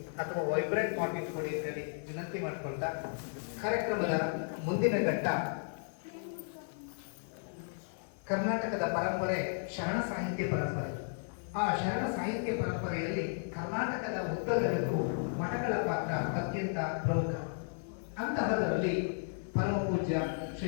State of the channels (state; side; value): silent; right; 55 dB below the other